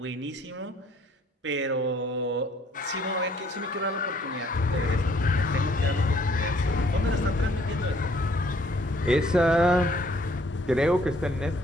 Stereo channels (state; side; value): normal; both; correlation 0.62